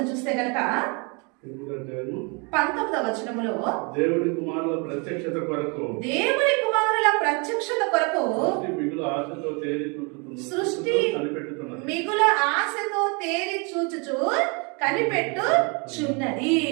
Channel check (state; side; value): quieter; left; 32.2 dB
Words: చూస్తే గనక 19వ వచనములో దేవుని కుమారుల ప్రత్యక్షత కొరకు సృష్టి మిగుల ఆశతో తేరి చూచుచు కనిపెట్టుచున్నది.